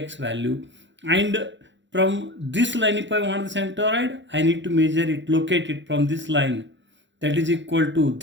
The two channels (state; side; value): late; left; 0.54 ms